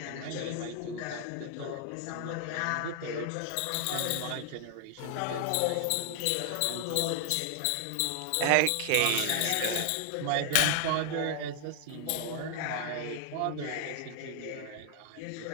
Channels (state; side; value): different; both; correlation 0.00